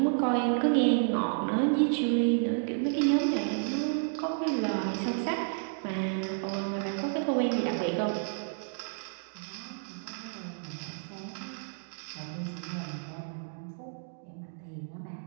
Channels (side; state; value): left; silent; digital silence